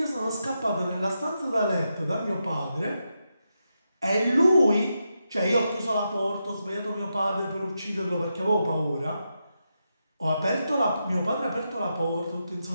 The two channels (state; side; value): inverted; both; correlation -0.86